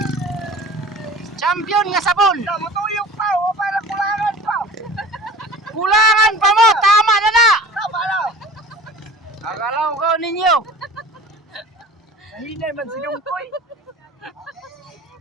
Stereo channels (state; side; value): normal; both; correlation 0.41